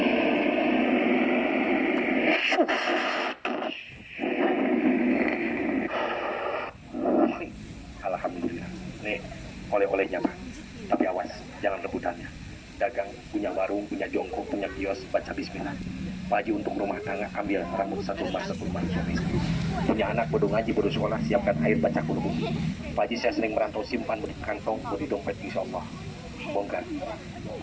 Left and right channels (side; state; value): both; identical; correlation 1.00